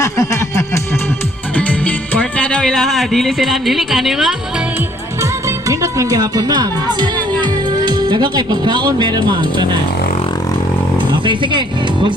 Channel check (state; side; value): normal; both; correlation 0.63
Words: Kwarta daw ilaha, dili sila, dili ka ni ma'am? Nindot lang gihapon ma'am. Daga kay pagkaon, meron ma'am, tanan. Okay, sige,